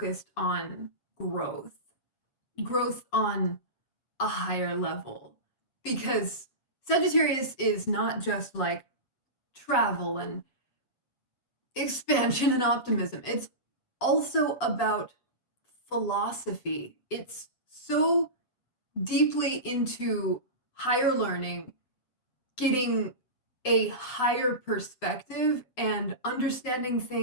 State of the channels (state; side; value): late; right; 8.0 ms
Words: on growth on a higher level. Because Sagittarius is not just like travel and expansion and optimism. It's also about philosophy. It's so deeply into higher learning, getting a higher perspective, and understanding